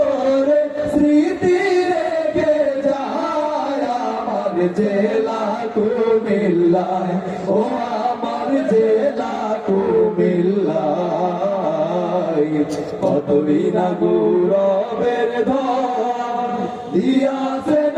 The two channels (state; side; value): identical; both; correlation 1.00